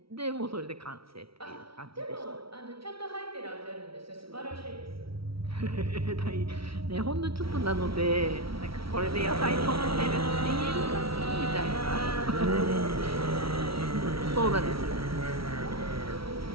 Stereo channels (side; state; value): left; late; 0.75 ms